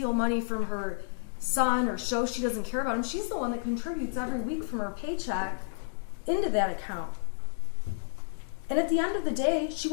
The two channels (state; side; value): silent; right; digital silence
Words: money from her son or show she doesn't care about him. She's the one that contributes every week from her paycheck into that account. And at the end of the day, she